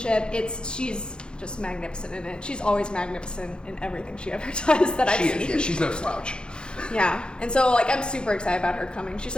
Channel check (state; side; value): late; right; 0.050 ms